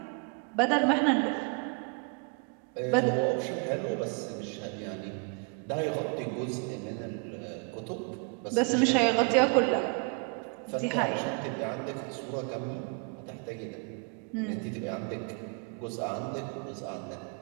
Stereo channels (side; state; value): left; quieter; 35.5 dB